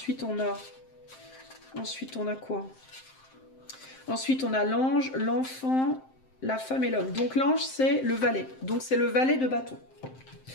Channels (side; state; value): right; late; 7.6 ms